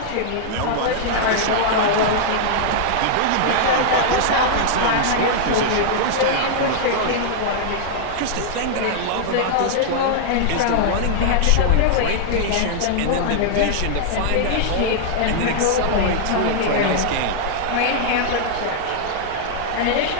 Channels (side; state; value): both; different; correlation -0.01